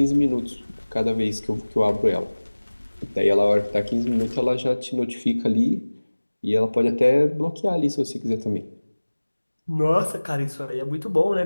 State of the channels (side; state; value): both; inverted; correlation -1.00